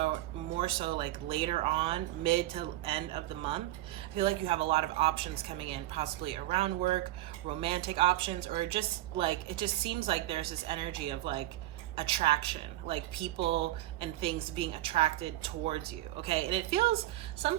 like later on, mid to end of the month, I feel like you have a lot of options coming in, possibly around work, romantic options, or just like, it just seems like there's this energy of like attraction, like people and things being attracted towards you, okay? And it feels,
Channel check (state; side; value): quieter; left; 15.8 dB